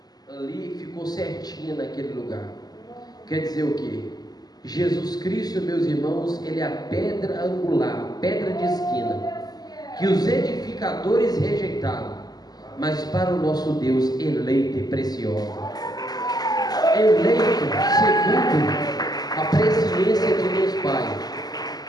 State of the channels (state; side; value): late; right; 0.19 ms